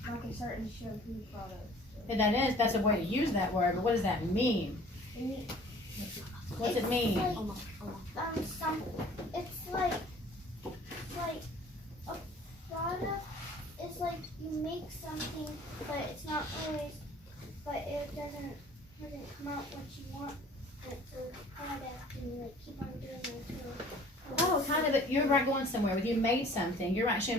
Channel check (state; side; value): normal; both; correlation 0.50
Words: like a certain shampoo product. That's a way to use that word, but what does that mean? What's it mean? It's like a product is like you make something, but it's not always, but it doesn't come out what you want it to product, and you like keep on doing it until. Oh, kind of. You're right, going somewhere. When you made something, you're right.